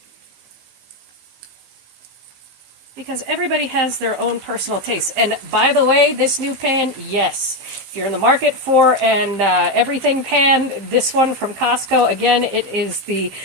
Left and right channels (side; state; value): left; late; 15 ms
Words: Because everybody has their own personal taste. And by the way, this new pan, yes, if you're in the market for an everything pan, this one from Costco, again, it is the